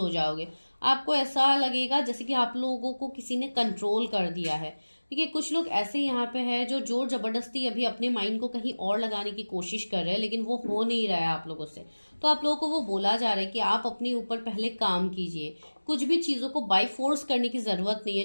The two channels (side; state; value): both; inverted; correlation -1.00